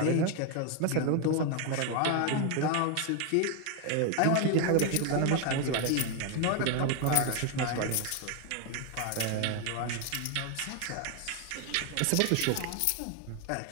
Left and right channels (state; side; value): different; both; correlation 0.01